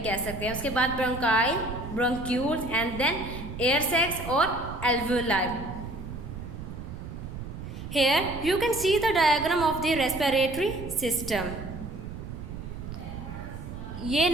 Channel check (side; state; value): right; noise; rumble, 9 dB below the sound